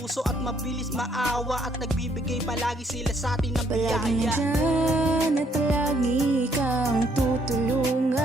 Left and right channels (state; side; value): normal; both; correlation 0.68